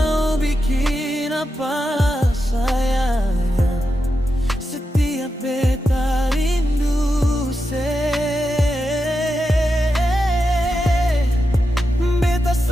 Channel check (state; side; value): normal; both; correlation 0.88